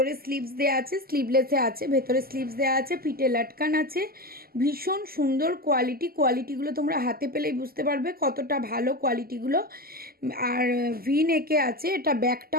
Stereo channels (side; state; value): left; late; 0.43 ms